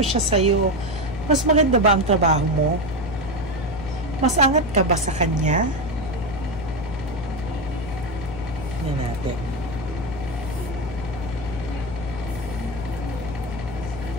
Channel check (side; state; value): left; noise; hum, 10 dB below the sound